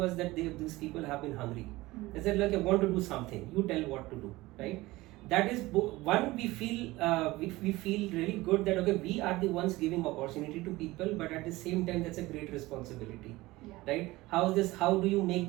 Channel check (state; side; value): quieter; left; 19.4 dB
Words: that these people have been hungry. They said, like, I want to do something, you tell what to do, right? That is one, we feel really good that okay, we are the ones giving opportunity to people, but at the same time that's a great responsibility, right? How do you make